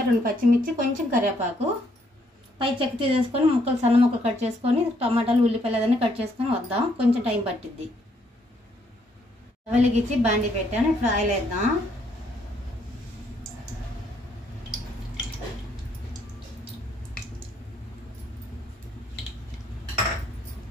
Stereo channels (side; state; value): both; normal; correlation 0.70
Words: 2 పచ్చిమిర్చి, కొంచెం కరివేపాకు, పై చెక్క తీసేసుకొని ముక్కలు సన్న ముక్కలు కట్ చేసుకొని టమాటాలు ఉల్లిపాయలు అదన్నీ కట్ చేసుకొని వద్దాం. కొంచెం టైం పట్టిద్ది. వెలిగించి బాండి పెట్టాను. ఇప్పుడు ఆయిల్ వేద్దాం.